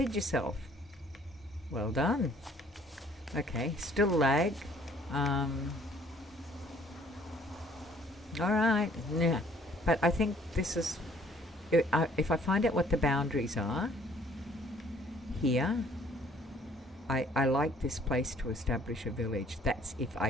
yourself. Well done. Okay, still lag. Alright, yeah. But I think this is... if I find out what the boundaries are here, I like this place to establish a village. That's if I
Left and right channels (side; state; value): both; normal; correlation 0.59